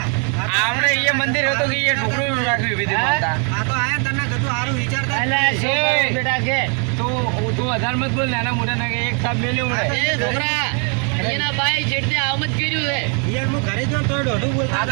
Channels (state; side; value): quieter; left; 39.0 dB